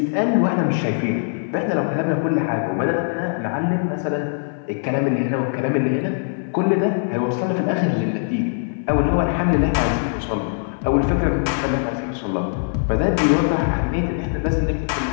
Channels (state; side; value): silent; right; 57 dB below the other